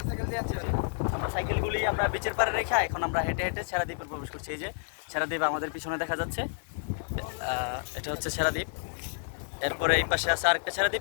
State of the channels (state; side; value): silent; right; 58 dB below the other